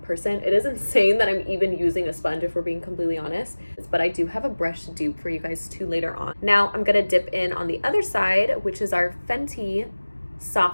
person. It is insane that I'm even using a sponge if we're being completely honest. But I do have a brush dupe for you guys too later on. Now I'm gonna dip in on the other side, which is our Fenty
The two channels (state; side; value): inverted; both; correlation -1.00